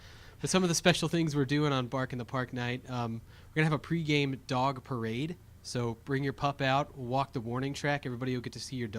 But some of the special things we're doing on Bark in the Park night, we're going to have a pregame dog parade. So bring your pup out, walk the warning track. Everybody will get to see your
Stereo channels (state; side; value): identical; both; correlation 1.00